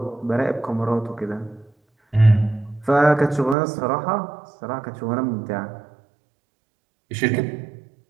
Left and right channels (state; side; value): drops out; left; at 3.6 s